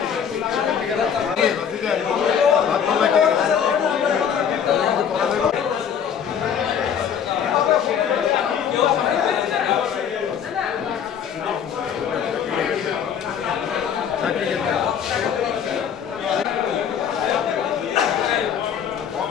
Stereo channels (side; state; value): right; quieter; 8.1 dB